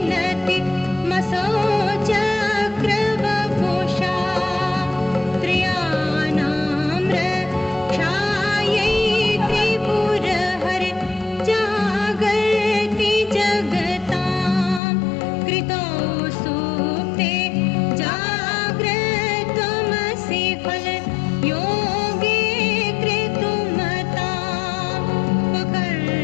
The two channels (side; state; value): right; drops out; at 14.8 s